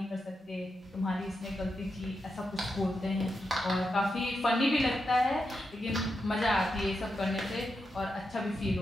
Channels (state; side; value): normal; both; correlation 0.86